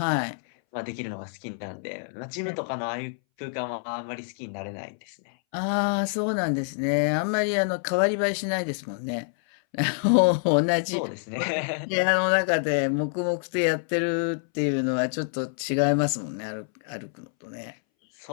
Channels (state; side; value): silent; right; 60 dB below the other